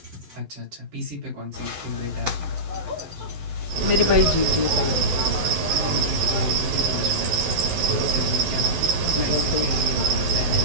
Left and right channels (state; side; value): late; left; 11 ms